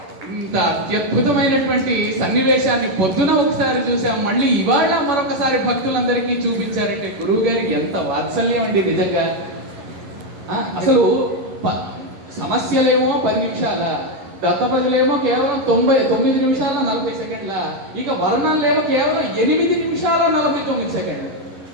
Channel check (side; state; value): left; late; 10 ms